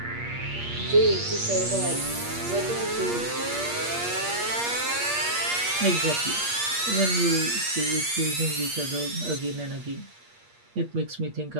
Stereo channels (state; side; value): late; left; 8.5 ms